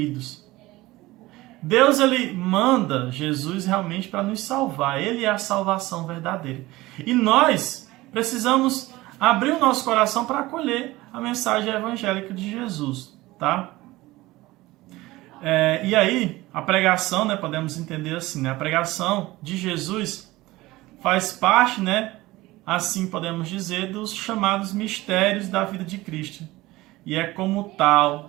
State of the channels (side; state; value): left; quieter; 19.0 dB